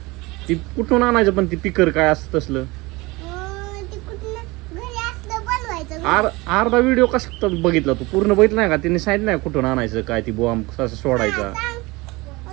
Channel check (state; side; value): quieter; left; 23.0 dB